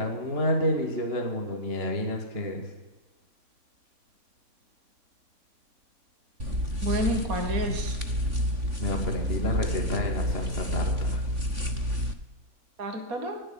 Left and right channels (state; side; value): late; left; 3.5 ms